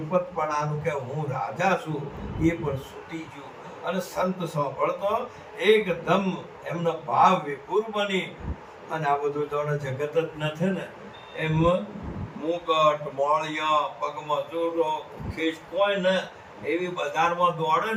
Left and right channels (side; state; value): both; identical; correlation 1.00